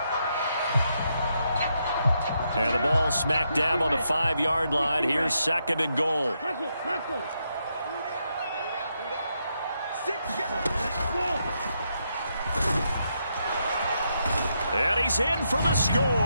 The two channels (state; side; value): inverted; both; correlation -0.80